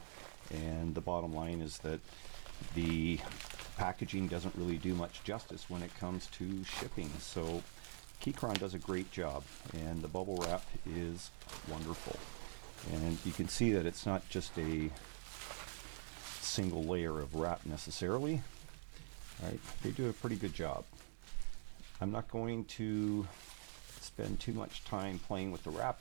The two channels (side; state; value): left; silent; digital silence